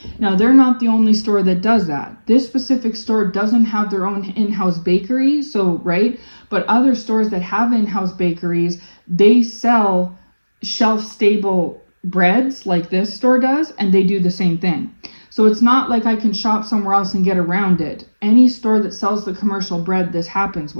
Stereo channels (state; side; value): inverted; both; correlation -1.00